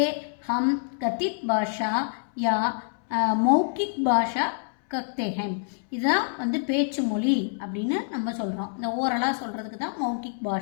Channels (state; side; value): silent; right; 61 dB below the other